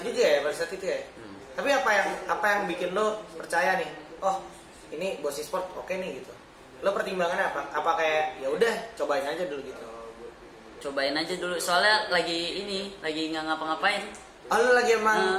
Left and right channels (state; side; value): identical; both; correlation 1.00